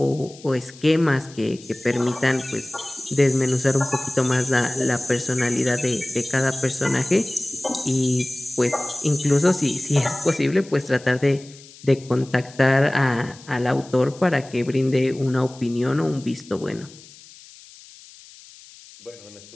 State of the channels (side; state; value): left; noise; hiss, 21 dB below the sound